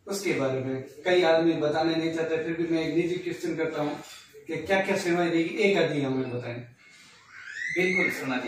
उसके बारे में कई आदमी बताने नहीं चाहते, फिर भी मैं एक निजी क्वेश्चन करता हूँ कि क्या क्या सेवाएं रहेगी, एक आदमी हमें बताएं। बिल्कुल शर्मा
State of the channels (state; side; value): identical; both; correlation 1.00